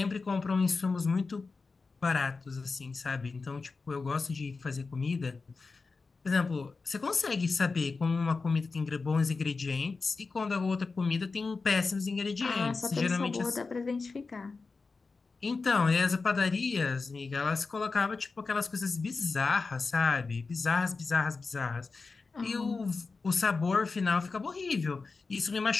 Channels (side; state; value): right; quieter; 4.2 dB